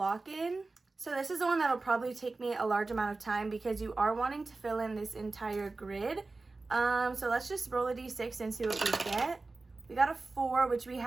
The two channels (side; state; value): left; quieter; 3.6 dB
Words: In. So this is the one that'll probably take me a large amount of time because you are wanting to fill in this entire grid. So let's just roll a d6 and see what we get. We got a 4, which we